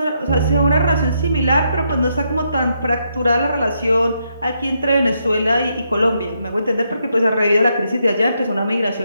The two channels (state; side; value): inverted; both; correlation -0.78